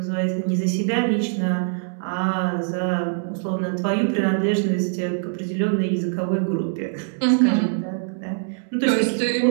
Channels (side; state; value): left; silent; digital silence